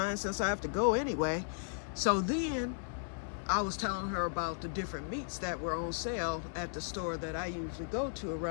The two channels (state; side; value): silent; right; digital silence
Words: since I have to go anyway. So then I was telling her about the different meats that were on sale at the store that I usually go to